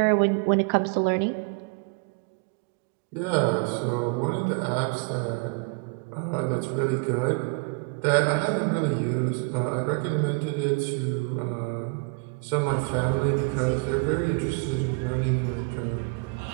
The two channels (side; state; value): left; quieter; 32.4 dB